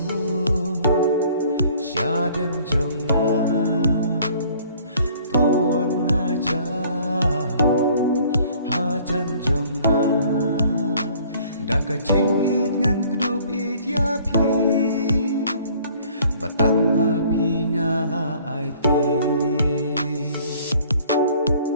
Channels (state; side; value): inverted; both; correlation -0.56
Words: syadem jonga tuan hajan jonga daka jingit ngan kedup it yapi batang api ngala aiti